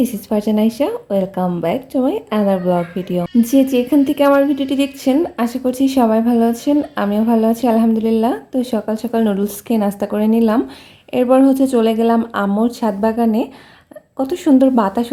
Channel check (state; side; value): identical; both; correlation 1.00